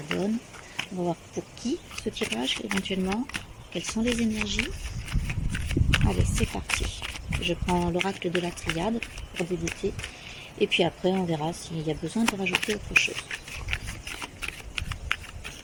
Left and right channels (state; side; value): identical; both; correlation 1.00